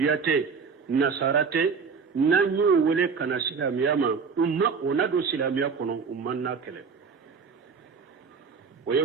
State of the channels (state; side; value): quieter; left; 5.4 dB